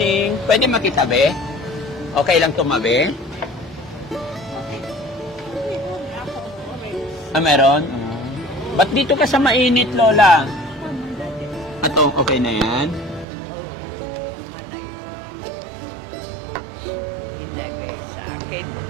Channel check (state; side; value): drops out; left; at 13.2 s